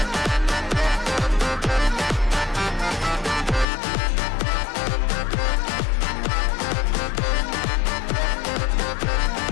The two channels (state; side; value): drops out; right; at 3.7 s